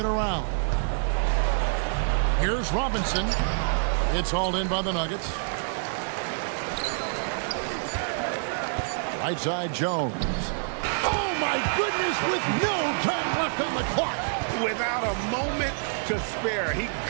around. Here's Robinson. It's hauled in by the Nuggets. Right side Jones. Oh my goodness, with no time left on the clock. Without a moment to spare, he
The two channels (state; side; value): silent; left; digital silence